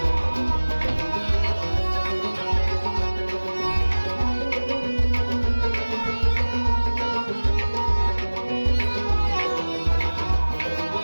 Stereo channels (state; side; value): inverted; both; correlation -1.00